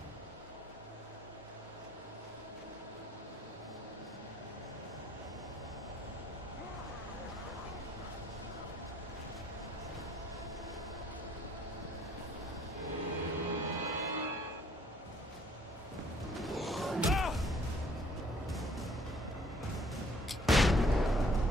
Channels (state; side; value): normal; both; correlation 0.60